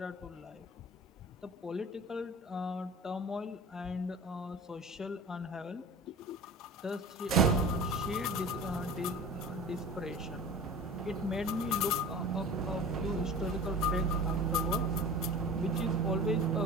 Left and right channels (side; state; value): both; normal; correlation 0.36